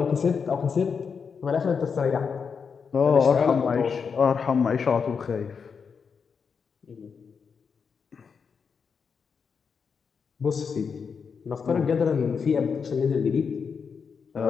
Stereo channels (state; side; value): quieter; right; 6.0 dB